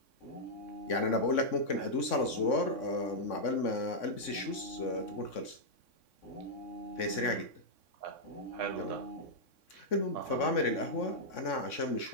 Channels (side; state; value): right; late; 3.6 ms